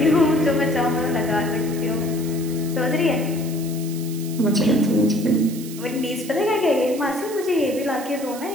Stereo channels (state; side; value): noise; right; hiss, 14 dB below the sound